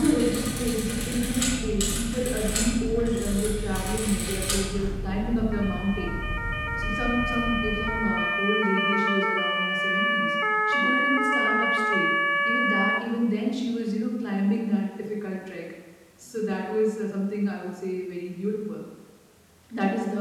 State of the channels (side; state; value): both; identical; correlation 1.00